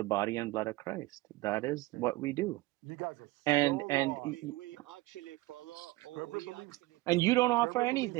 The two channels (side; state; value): left; quieter; 19.9 dB